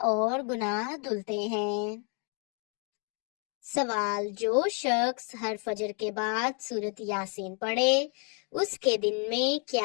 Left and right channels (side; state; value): right; quieter; 38.4 dB